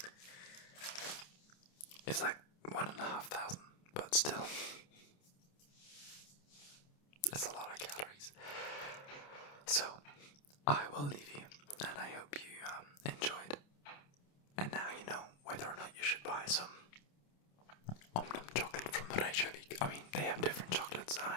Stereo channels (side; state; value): right; late; 28 ms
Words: It's like 1,500, but still, it's a lot of calories. So, I will leave you, and I hope you enjoyed. And now you know whether or not you should buy some Omnum chocolate from Reykjavik. I mean, they have different chocolates, and